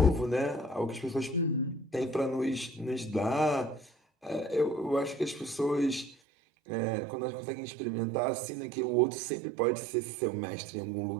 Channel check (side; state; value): left; drops out; at 6.2 s